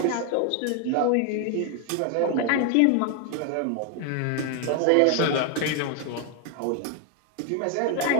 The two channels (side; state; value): both; different; correlation 0.01